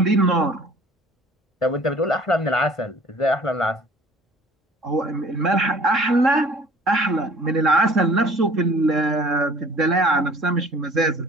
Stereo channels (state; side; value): normal; both; correlation 0.50